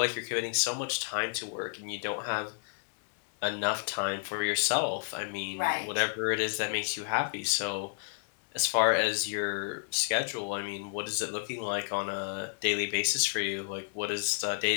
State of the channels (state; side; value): silent; right; digital silence